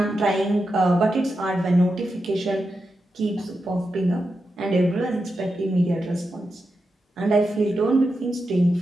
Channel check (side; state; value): both; normal; correlation 0.88